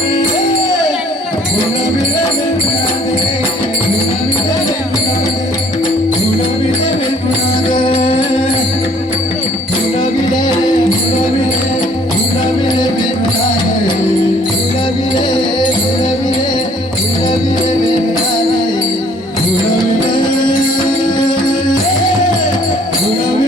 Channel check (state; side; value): normal; both; correlation 0.58